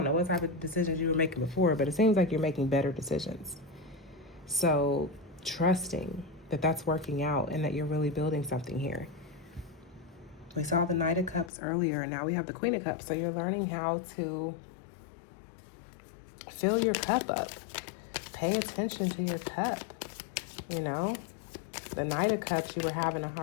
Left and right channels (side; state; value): right; drops out; at 11.5 s